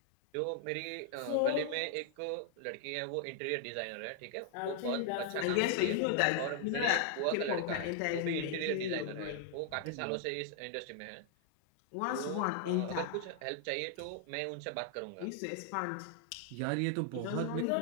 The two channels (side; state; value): both; different; correlation 0.00